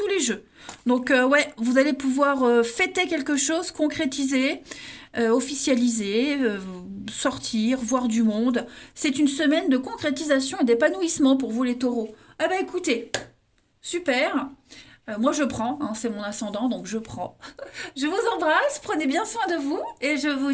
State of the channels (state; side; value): identical; both; correlation 1.00